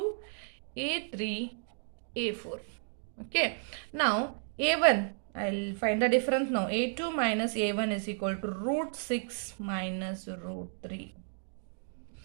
A3, A4. Okay. Now A1, I'll find the difference now. A2 minus A1 is equal to root 6 minus root 3.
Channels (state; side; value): silent; left; digital silence